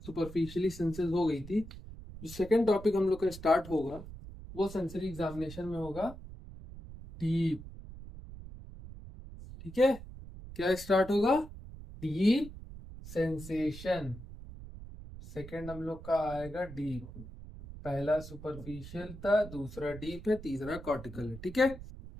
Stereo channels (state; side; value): noise; right; rumble, 14 dB below the sound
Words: सुपरफिशियली सेंसेस हो गई थी। जो सेकंड टॉपिक हम लोग का स्टार्ट होगा वो सेंसरी एग्जामिनेशन में होगा डीप। ठीक है, क्या स्टार्ट होगा? Deep sensation. सेकंड हम लोग का आएगा डीप। पहला सुपरफिशियल था, दूसरा डीप है, तीसरा कॉर्टिकल है। ठीक है,